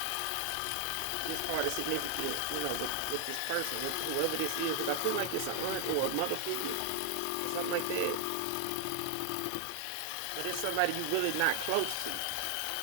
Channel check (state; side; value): different; both; correlation 0.00